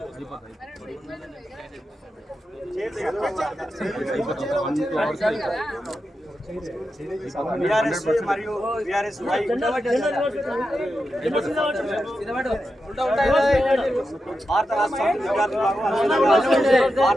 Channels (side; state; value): both; normal; correlation 0.89